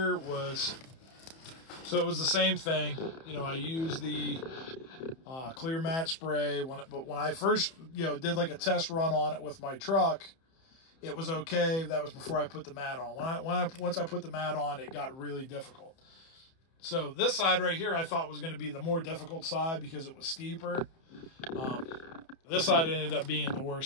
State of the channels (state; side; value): late; right; 31 ms